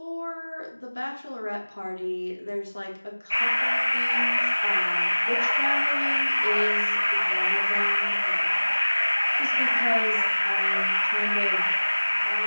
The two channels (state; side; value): inverted; both; correlation -1.00